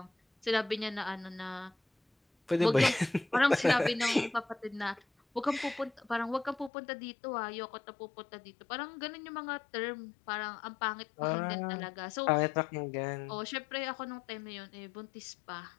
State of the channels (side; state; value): right; drops out; at 6.7 s